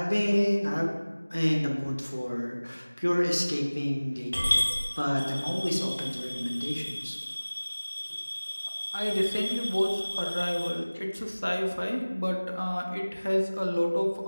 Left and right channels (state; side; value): inverted; both; correlation -1.00